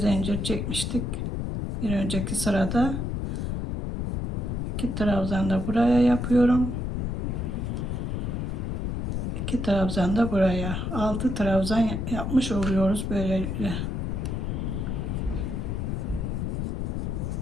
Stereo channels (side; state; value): left; noise; rumble, 1 dB below the sound